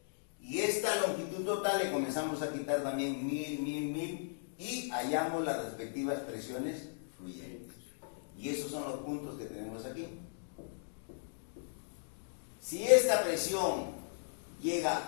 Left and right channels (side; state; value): right; silent; digital silence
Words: Y esta longitud total le comenzamos a quitar también 1000 y hallamos las respectivas presiones fluyentes. Y esos son los puntos que tenemos aquí. Si esta presión